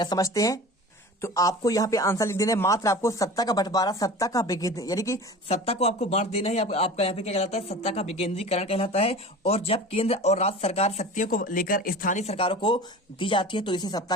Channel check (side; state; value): both; normal; correlation 0.37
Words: समझते हैं, तो आपको यहाँ पे आंसर लिख देना है। मात्र आपको सत्ता का बंटवारा, सत्ता का विकेंद्रीकरण, यानी कि सत्ता को आपको बांट देना है। आपका यहाँ पे क्या कहलाता है, सत्ता का विकेंद्रीकरण कहलाता है। और जब केंद्र और राज्य सरकार शक्तियों को लेकर स्थानीय सरकारों को दी जाती है तो इसे सत्ता